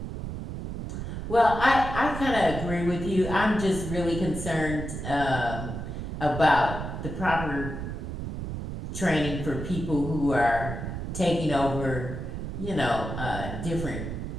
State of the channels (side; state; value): right; noise; rumble, 6 dB below the sound